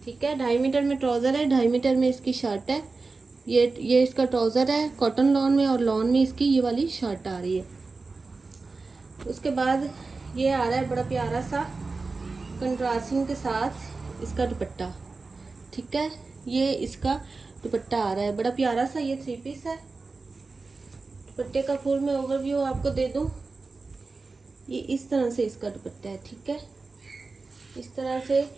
ठीक है। 2.5 मीटर में ट्राउज़र है, 2.5 मीटर में इसकी शर्ट है। ये इसका ट्राउज़र है कॉटन लॉन में, और लॉन में इसकी ये वाली शर्ट आ रही है। उसके बाद ये आ रहा है बड़ा प्यारा सा कंट्रास्टिंग के साथ इसका दुपट्टा, ठीक है। ये इसका दुपट्टा आ रहा है बड़ा प्यारा सा, ये 3 पीस है। दुपट्टे का फुल मैं ओवरव्यू आपको दे दूं। ये इस तरह से इसका दुपट्टा है, ठीक है। इस तरह से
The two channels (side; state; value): left; quieter; 3.9 dB